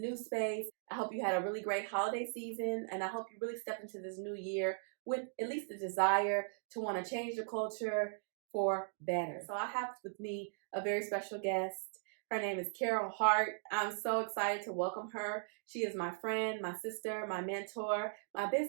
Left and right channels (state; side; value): silent; left; digital silence